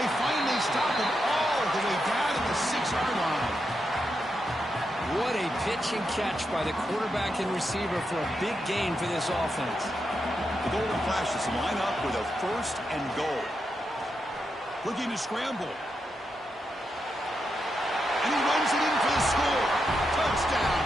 They finally stop him all the way down to the 6-yard line. What a pitch and catch by the quarterback and receiver for a big gain for this offense. The Golden Flashes line up with a 1st and goal. Looking to scramble. And he runs it in for the score. Touchdown,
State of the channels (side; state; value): both; normal; correlation 0.85